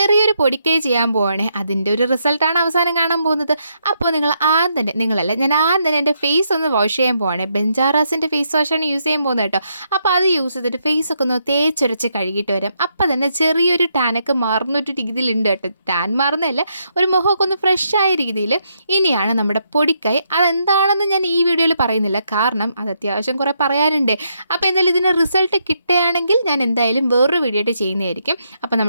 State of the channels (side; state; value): both; inverted; correlation -0.77